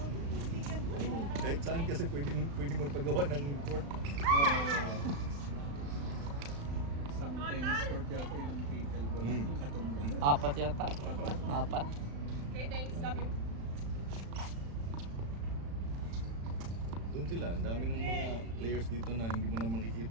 doon, puro pick and roll. Kahit saan kasi pwedeng magpagawa ng court. Isang tennis court yata ilang pickleball Mm. katumba. 4 yata. 4. Doon sila, ang dami ng mga players dito na hindi mo na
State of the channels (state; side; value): late; left; 35 ms